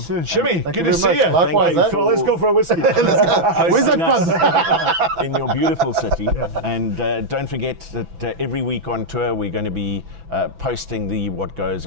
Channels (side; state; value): left; late; 6.0 ms